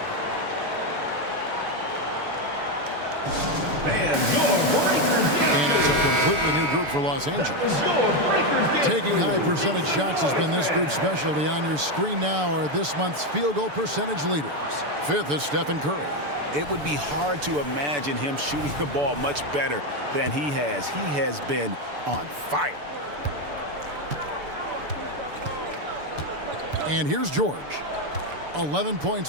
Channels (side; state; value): left; late; 6.9 ms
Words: And it's a completely new group for Los Angeles. Taking high percentage shots has been this group's specialty. On your screen now are this month's field goal percentage leaders. 5th is Stephen Curry. It would be hard to imagine him shooting the ball much better than he has. He has been on fire. And here's George. 11